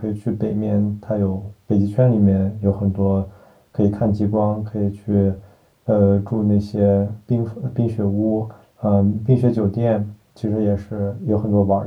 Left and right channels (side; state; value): both; identical; correlation 1.00